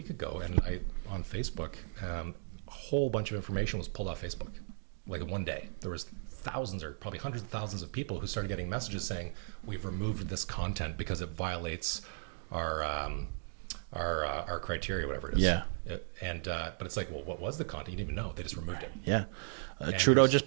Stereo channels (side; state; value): left; silent; digital silence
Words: ago, and on Facebook, a whole bunch of information was pulled off Facebook. Like in one day, there was thousands or probably hundreds of thousands of people who started getting messages saying, we've removed this content because it violates our our criteria, whatever it is. Yeah. But it's like, well, what was the content? You didn't even know. They just removed it. Yeah. Trudeau just